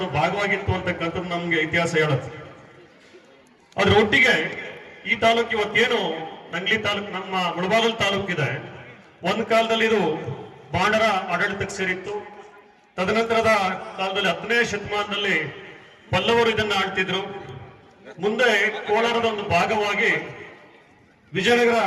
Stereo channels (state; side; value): identical; both; correlation 1.00